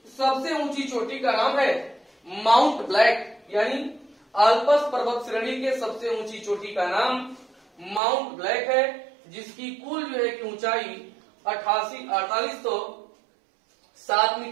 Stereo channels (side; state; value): left; drops out; at 8.0 s